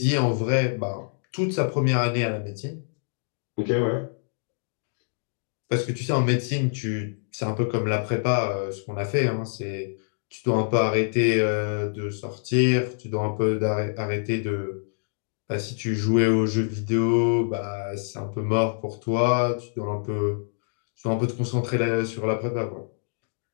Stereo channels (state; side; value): silent; right; digital silence